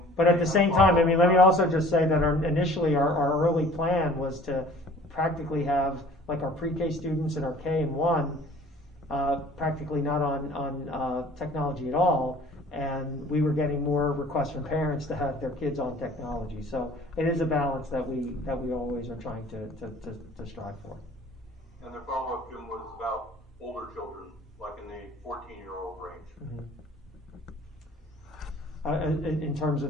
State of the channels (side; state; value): both; normal; correlation 0.50